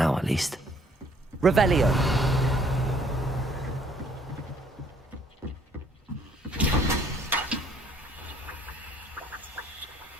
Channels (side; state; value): both; normal; correlation 0.61